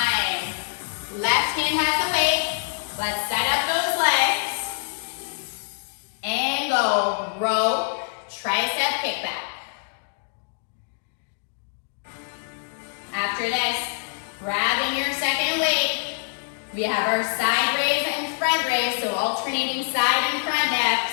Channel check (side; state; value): right; silent; digital silence